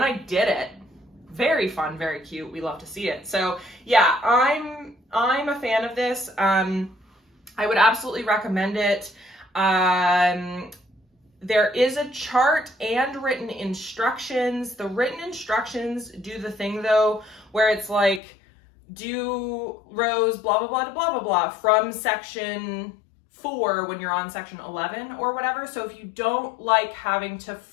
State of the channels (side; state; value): right; drops out; at 18.2 s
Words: I did it. Very fun, very cute. We love to see it. So yeah, I'm a fan of this. I would absolutely recommend it. There is a chart and written instructions. The written instructions do the thing though, where it's like, do rows, blah, blah, blah, blah, blah, blah, from section 4 when you're on section 11 or whatever. So if you don't like having to